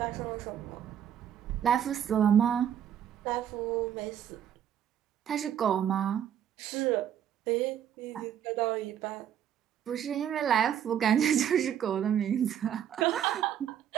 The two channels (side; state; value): left; quieter; 9.7 dB